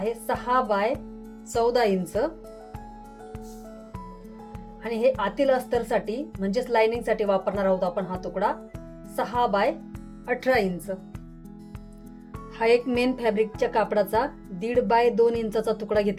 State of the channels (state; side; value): identical; both; correlation 1.00